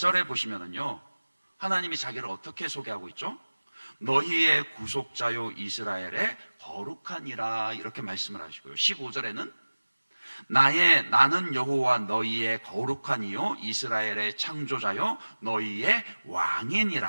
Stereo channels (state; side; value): inverted; both; correlation -1.00